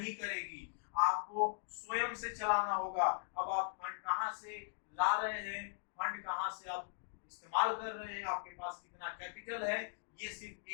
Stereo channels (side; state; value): right; silent; digital silence